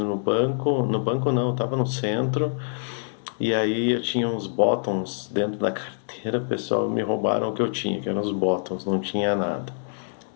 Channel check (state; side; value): silent; right; digital silence